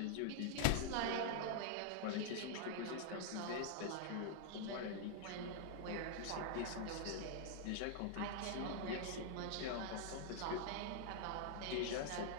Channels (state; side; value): different; both; correlation -0.01